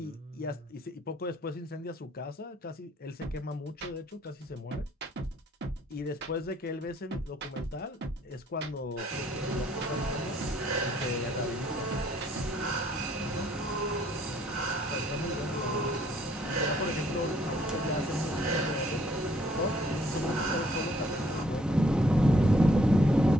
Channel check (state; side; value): normal; both; correlation 0.64